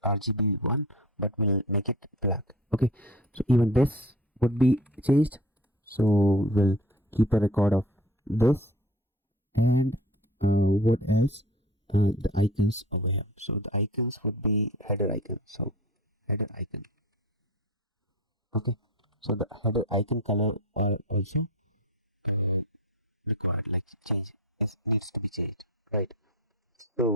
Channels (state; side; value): normal; both; correlation 0.38